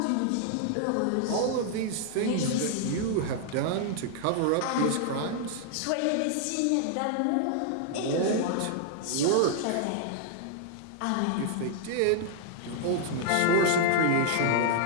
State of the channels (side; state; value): both; different; correlation 0.00